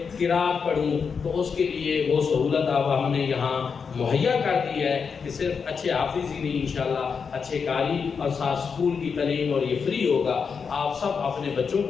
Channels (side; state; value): right; quieter; 5.9 dB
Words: قرات پڑھوں تو اس کے لیے وہ سہولت اب ہم نے یہاں مہیا کر دی ہے کہ صرف اچھے حافظ ہی نہیں انشاءاللہ اچھے قاری اور ساتھ اسکول کی تعلیم، اور یہ فری ہوگا. آپ سب اپنے بچوں